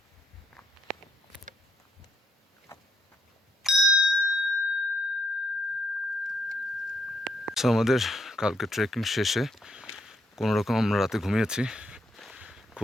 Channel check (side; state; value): both; normal; correlation 0.76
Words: সো আমাদের কালকে ট্রেকিং শেষে কোনোরকম আমরা রাতে ঘুমিয়েছি।